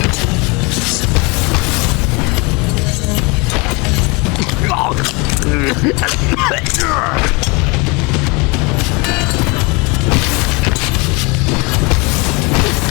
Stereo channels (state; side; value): quieter; right; 28.3 dB